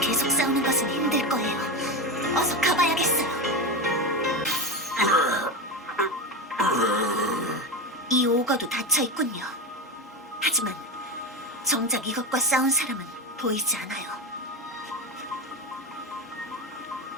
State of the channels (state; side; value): normal; both; correlation 0.19